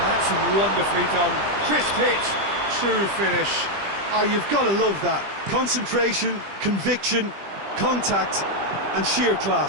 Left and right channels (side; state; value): left; late; 20 ms